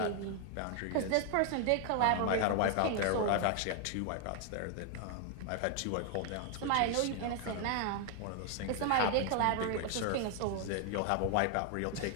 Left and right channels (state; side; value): different; both; correlation 0.00